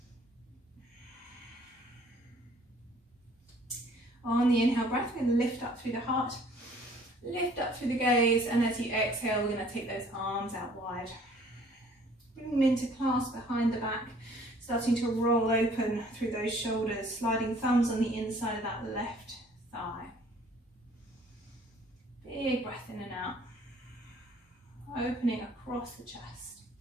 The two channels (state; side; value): normal; both; correlation 0.56